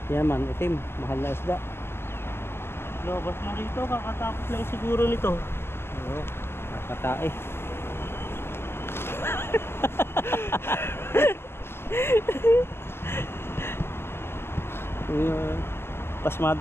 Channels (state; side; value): late; right; 0.11 ms